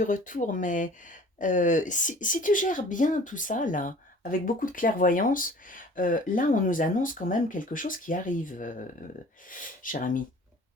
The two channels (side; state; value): both; normal; correlation 0.47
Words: retour, mais si tu gères bien tout ça, là, avec beaucoup de clairvoyance, là, on nous annonce quand même quelque chose qui arrive, cher ami.